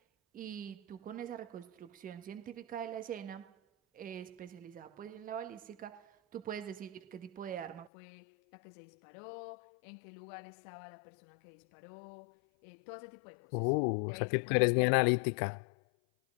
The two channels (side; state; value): right; drops out; at 7.9 s